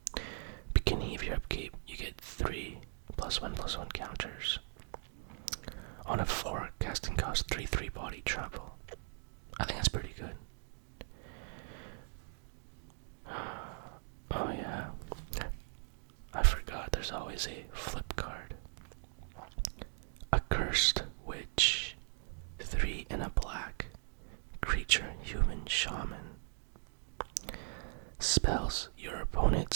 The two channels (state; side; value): silent; left; 52 dB below the other